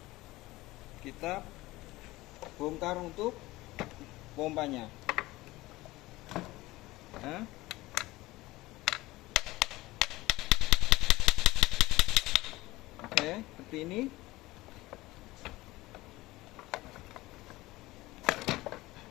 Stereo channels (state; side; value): quieter; right; 19.1 dB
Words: kita bongkar untuk pompanya. Nah, oke, seperti ini.